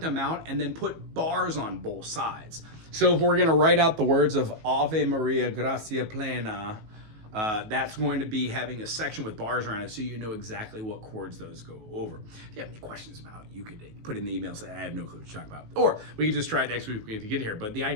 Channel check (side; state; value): left; late; 19 ms